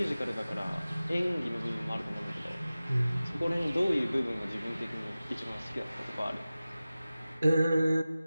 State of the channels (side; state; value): both; inverted; correlation -0.97